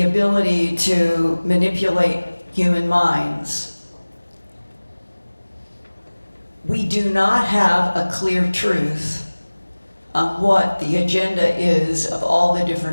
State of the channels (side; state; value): both; inverted; correlation -1.00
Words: ability to manipulate human minds, we do not have a clear truth on what the agenda is of all the